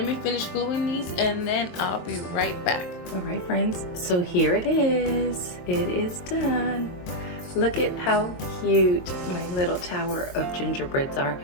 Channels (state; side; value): late; right; 22 ms